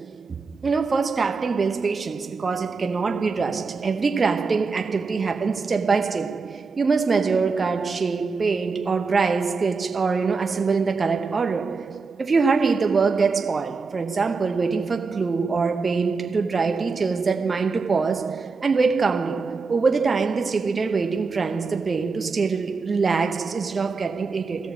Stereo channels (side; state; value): left; quieter; 4.5 dB